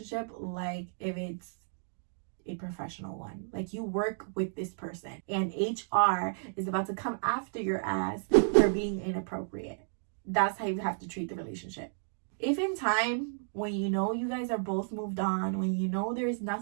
like if it's a professional one. Like, you work with this person and HR is about to come after your ass for being inappropriate. That's how you have to treat the relationship. If in time, when you know you guys are both moved on, when you know there's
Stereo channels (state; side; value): silent; left; digital silence